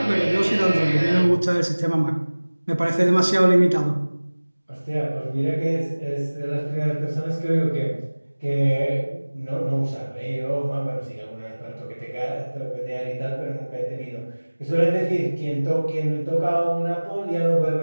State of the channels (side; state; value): both; inverted; correlation -1.00